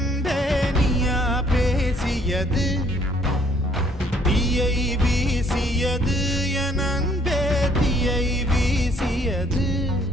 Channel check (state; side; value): normal; both; correlation 0.63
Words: நீயா பேசியது தீயை வீசியது என் அன்பே தீயை வீசியது